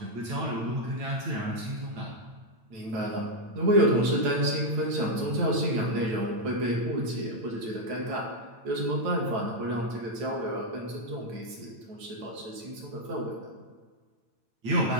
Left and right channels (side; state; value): left; late; 8.9 ms